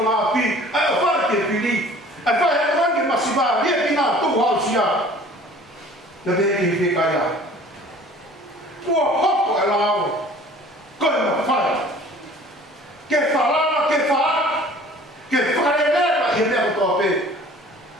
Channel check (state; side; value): normal; both; correlation 0.49